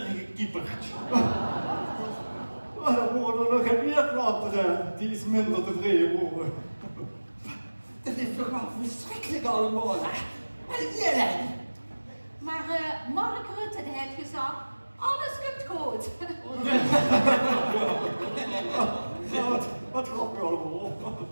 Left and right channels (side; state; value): both; inverted; correlation -1.00